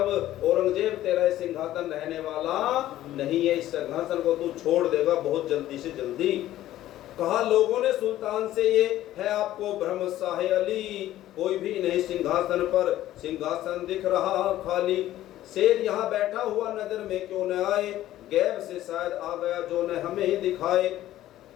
औरंगजेब तेरा सिंहासन रहने वाला नहीं है, इस सिंहासन को तू छोड़ देगा बहुत जल्दी से जल्दी। कहा लोगों ने सुल्तान से ये है आपको भ्रम शाहे अली, कोई भी नहीं सिंहासन पर, सिंहासन दिख रहा खाली। शेर यहाँ बैठा हुआ नजर में क्यों न आए, गैब से शायद आ गया जो न हमें ही दिखाए।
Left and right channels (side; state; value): right; quieter; 13.9 dB